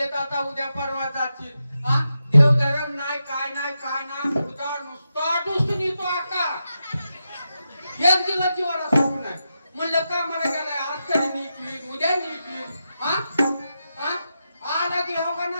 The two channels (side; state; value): both; inverted; correlation -0.88